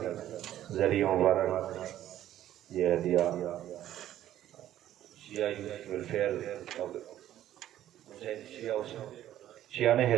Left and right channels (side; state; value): left; quieter; 12.4 dB